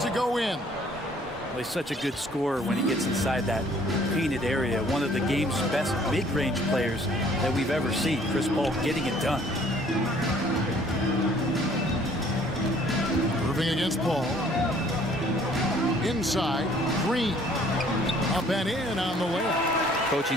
to go in. Well, he's such a good scorer when he gets inside that painted area. One of the game's best mid-range players that we've ever seen. Chris Paul getting it done. Moving against Paul. Inside, Green. Up and in on the layup.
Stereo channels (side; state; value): both; normal; correlation 0.58